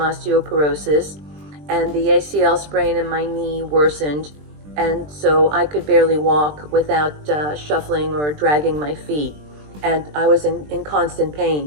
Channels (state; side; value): late; left; 20 ms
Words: and the ACL sprain in my knee worsened, and so I could barely walk without shuffling or dragging my feet, and I was in constant